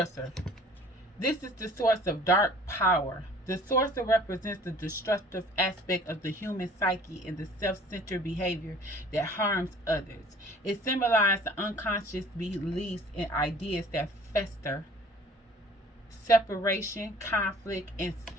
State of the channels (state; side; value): normal; both; correlation 0.51